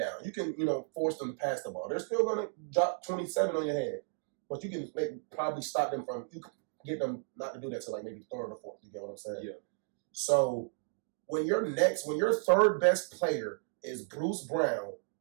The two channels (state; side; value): silent; left; digital silence